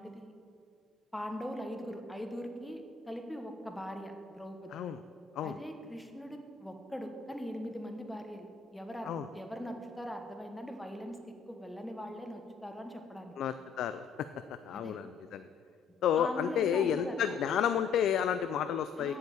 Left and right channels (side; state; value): right; quieter; 6.3 dB